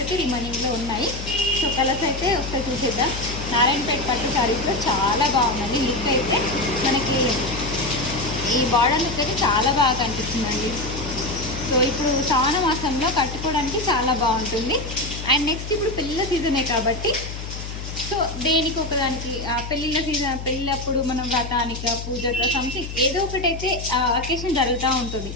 అయితే రిమైనింగ్లో ఉన్నాయి. సో కలర్స్ అయితే ఒకసారి చూసేద్దాం. నారాయణపేట పట్టు శారీస్లో చాలా బాగుందండి. లుక్ అయితే మనకి ఈ బార్డర్ లుక్ అయితే చాలా బాగా కనిపిస్తుందండి. సో ఇప్పుడు శ్రావణ మాసంలో కట్టుకోవడానికి చాలా బాగుంటుంది. అండ్ నెక్స్ట్ ఇప్పుడు పెళ్ళిళ్ళ సీజనే కాబట్టి సో దేనికి ఒకదానికి పెళ్ళిళ్ళ సీజన్, పెళ్ళప్పుడు మనం వ్రతానిక పూజక సంథింగ్ ఏదో ఒకటైతే అకేషన్ జరుగుతూ ఉంటుంది.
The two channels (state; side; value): noise; left; hum, 8 dB below the sound